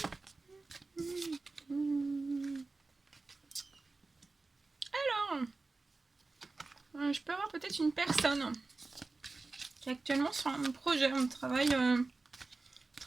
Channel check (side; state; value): left; quieter; 3.6 dB